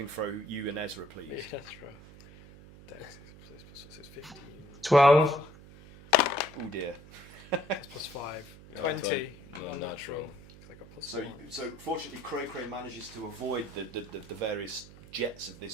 throw, you and Ezra, please? Yeah, Ezra. Dex is 15. 12. Oh dear. That's +5. 20. No, Unnatural. 'cause I got plus So, 1. so fortunately, Cray manages to avoid the various jets of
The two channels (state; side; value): noise; right; hum, 19 dB below the sound